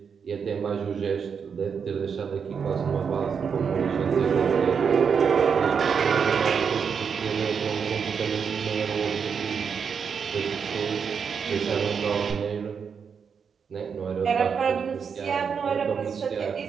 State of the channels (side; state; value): left; quieter; 6.5 dB